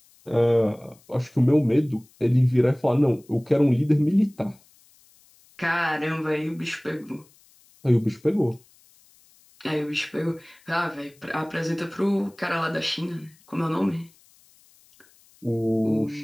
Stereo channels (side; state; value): left; noise; hiss, 30 dB below the sound